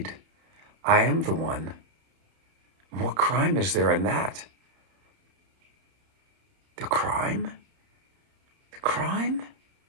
I am the one. What crime is there in that? The crime? The crime?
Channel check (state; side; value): late; left; 31 ms